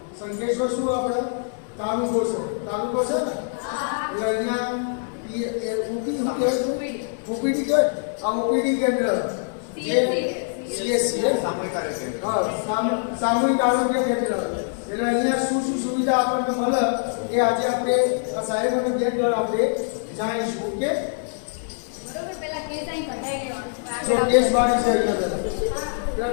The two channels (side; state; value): right; silent; digital silence